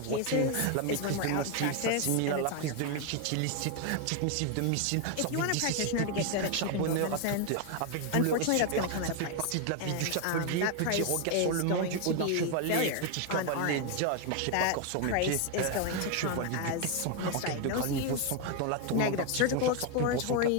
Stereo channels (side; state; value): both; different; correlation 0.01